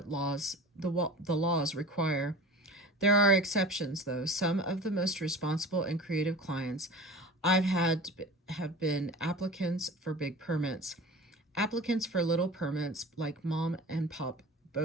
the laws require. There are exceptions, though. Some of the most responsible and creative clients I've had have been applicants for big permits. Applicants for little permits, like mom and pop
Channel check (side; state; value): both; normal; correlation 0.38